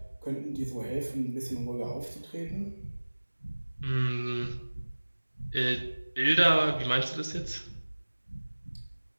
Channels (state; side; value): inverted; both; correlation -1.00